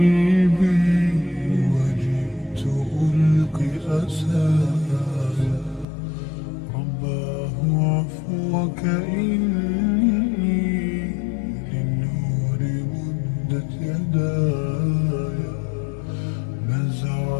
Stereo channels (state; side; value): drops out; right; at 5.9 s